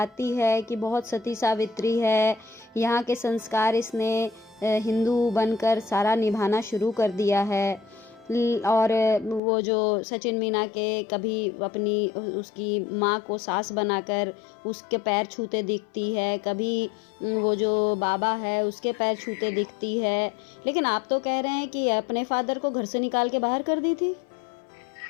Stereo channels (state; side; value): drops out; right; at 9.4 s